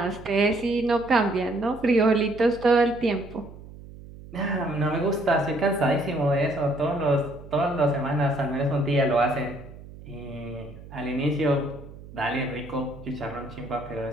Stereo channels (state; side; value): noise; right; hum, 17 dB below the sound